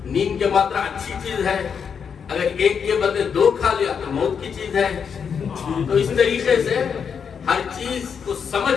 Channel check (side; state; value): right; quieter; 6.8 dB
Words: نیم کی ماترا اچھی چیز ہے، اگر ایک کے بدلے 2 کھا لیا تو موت کی چیز ہے. تو اس طریقے سے ہر چیز کو